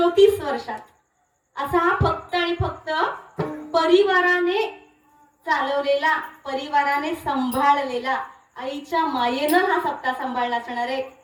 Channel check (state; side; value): identical; both; correlation 1.00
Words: वर्षात. असा हा फक्त आणि फक्त परिवाराने चालवलेला, परिवाराने सांभाळलेला, आईच्या मायेनं हा सप्ताह सांभाळला असणार आहे.